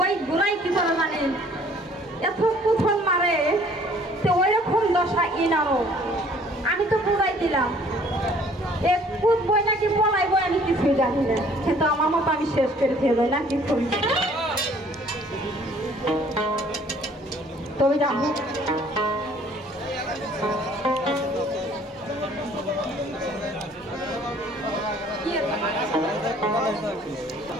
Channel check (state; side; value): normal; both; correlation 0.56